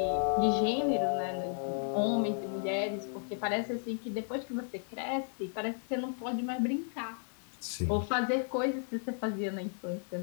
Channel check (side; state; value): right; silent; 55 dB below the other